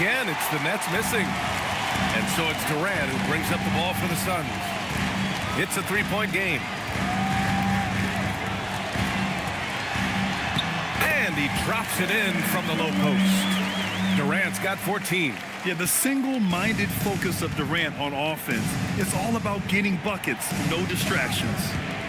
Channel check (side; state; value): both; identical; correlation 1.00